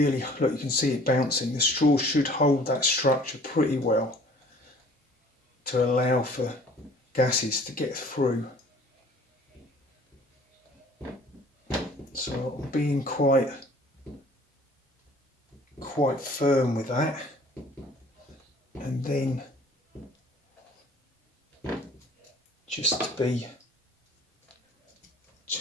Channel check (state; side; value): normal; both; correlation 0.51